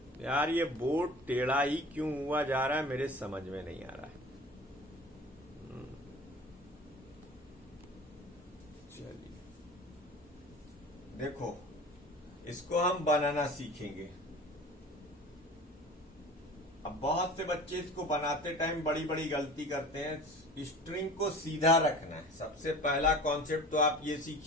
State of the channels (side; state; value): both; normal; correlation 0.40